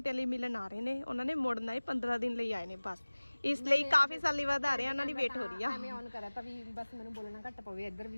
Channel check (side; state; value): both; inverted; correlation -1.00